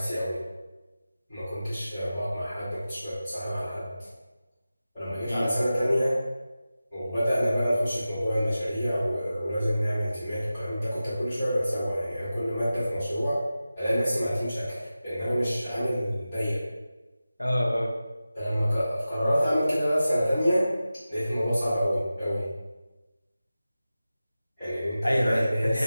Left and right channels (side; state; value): both; inverted; correlation -0.94